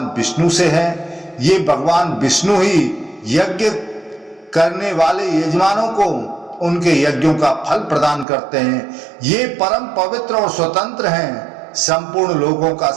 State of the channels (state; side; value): drops out; left; at 8.2 s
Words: विष्णु से है। ये भगवान विष्णु ही यज्ञ करने वाले यजमानों को उनके यज्ञों का फल प्रदान करते हैं। ये परम पवित्र और स्वतंत्र हैं। संपूर्ण लोगों का